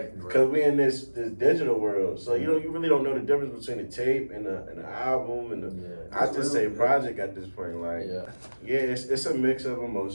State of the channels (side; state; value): both; inverted; correlation -1.00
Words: Cause we in this digital world, so you really don't know the difference between the tape and the album and the. I just say project at this point, like it's a mix of